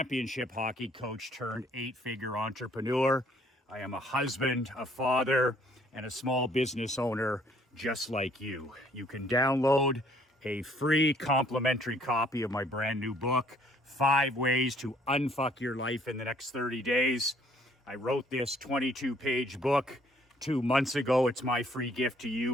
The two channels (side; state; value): both; normal; correlation 0.62